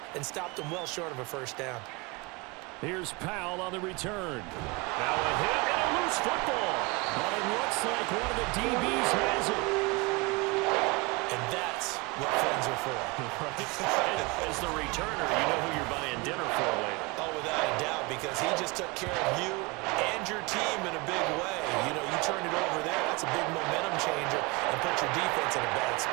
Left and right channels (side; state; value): left; quieter; 26.1 dB